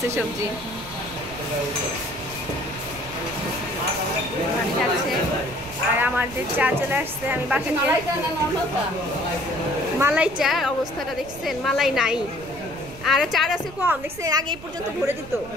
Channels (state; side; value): noise; right; rumble, 17 dB below the sound